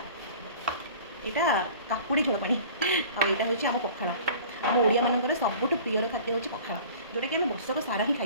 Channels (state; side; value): inverted; both; correlation -0.44